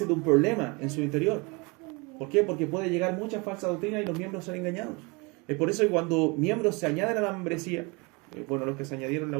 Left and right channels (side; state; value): left; quieter; 28.2 dB